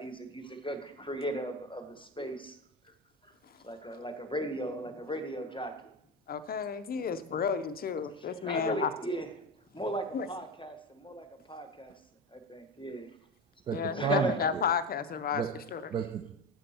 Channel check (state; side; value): normal; both; correlation 0.23